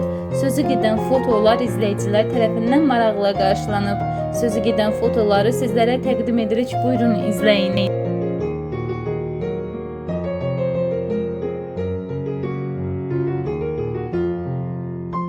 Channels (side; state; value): both; identical; correlation 1.00